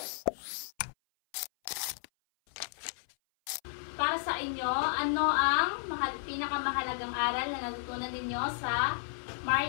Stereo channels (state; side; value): silent; right; 56 dB below the other